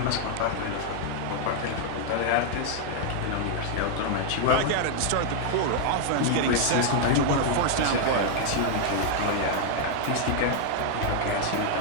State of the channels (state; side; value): different; both; correlation 0.00